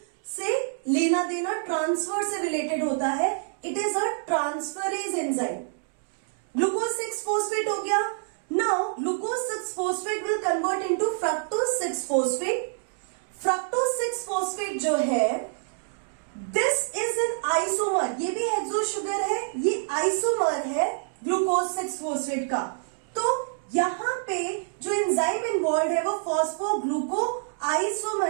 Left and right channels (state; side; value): silent; left; 60 dB below the other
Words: से लेना देना, transfer से रिलेटेड होता है। It is a transferase enzyme. Glucose six phosphate हो गया। Now glucose 6-phosphate will convert into fructose 6-phosphate. Fructose 6-phosphate जो है, this is an isomer, ये भी हेक्सो शुगर है, ये आइसोमर है ग्लूकोज 6-phosphate का। तो यहाँ पे जो एंजाइम इन्वॉल्व है वो फॉस्फोग्लूको